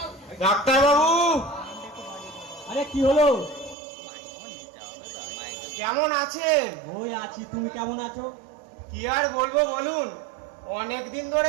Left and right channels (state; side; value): drops out; left; at 3.8 s